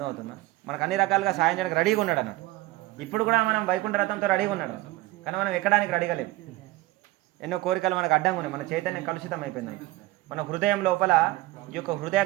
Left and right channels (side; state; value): left; quieter; 18.6 dB